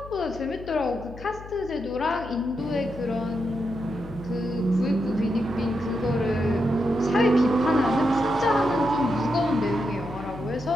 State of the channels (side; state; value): left; noise; hum, 15 dB below the sound